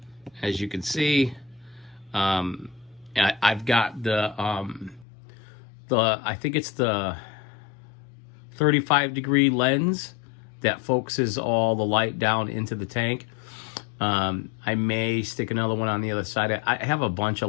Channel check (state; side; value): drops out; right; at 5.1 s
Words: as you can see. I've got the I think it's the 35-degree lens that focuses all the light down into the tank. I may stick another one on the other side. I have a bunch of